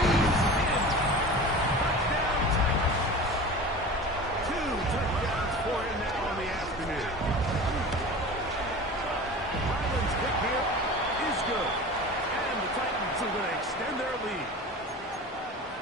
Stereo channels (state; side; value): normal; both; correlation 0.35